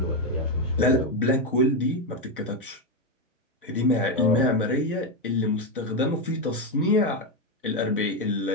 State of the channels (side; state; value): both; normal; correlation 0.07